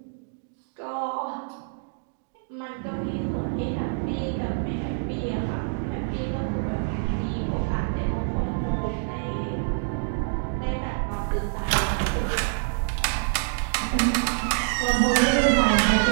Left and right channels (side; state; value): left; silent; digital silence